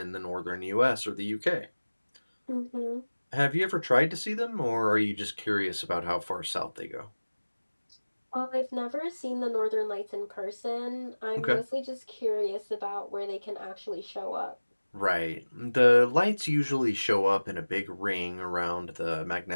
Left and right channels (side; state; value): both; inverted; correlation -1.00